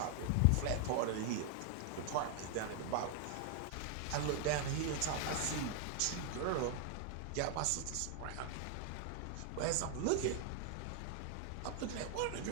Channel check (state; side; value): different; both; correlation 0.00